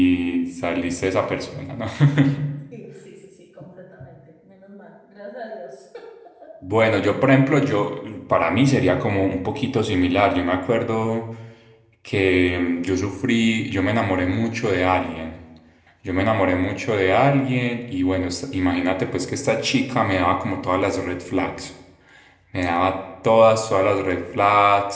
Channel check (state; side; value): identical; both; correlation 1.00